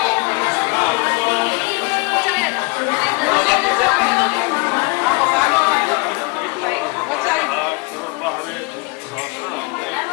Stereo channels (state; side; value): quieter; right; 27.2 dB